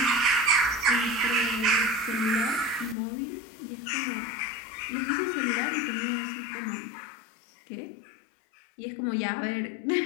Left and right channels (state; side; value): drops out; right; at 3.0 s